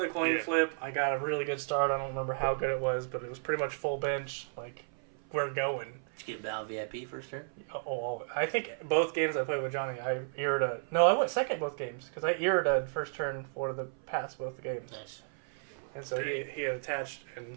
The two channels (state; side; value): silent; left; 56 dB below the other